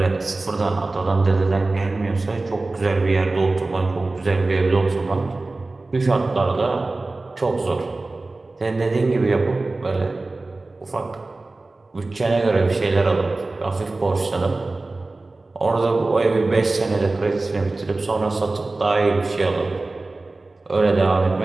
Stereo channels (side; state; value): left; quieter; 3.2 dB